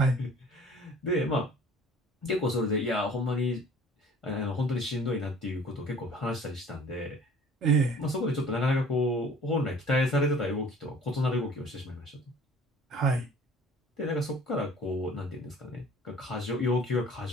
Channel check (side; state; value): both; normal; correlation 0.49